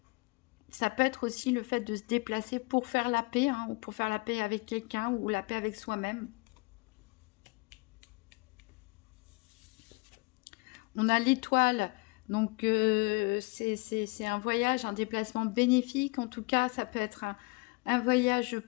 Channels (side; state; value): right; quieter; 27.6 dB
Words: peut être aussi le fait de se déplacer pour faire la paix, hein, ou pour faire la paix avec quelqu'un ou la paix avec soi-même. On a l'étoile, donc c'est un voyage, un déplacement bénéfique. En tout cas, ça peut être un voyage